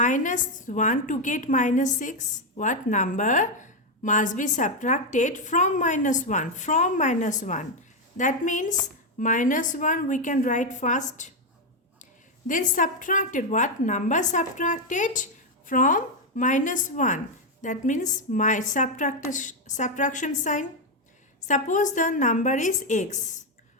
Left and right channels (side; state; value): both; normal; correlation 0.04